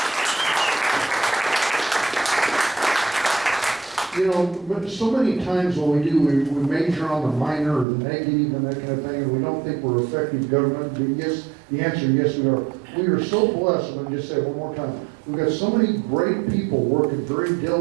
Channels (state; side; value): drops out; left; at 7.9 s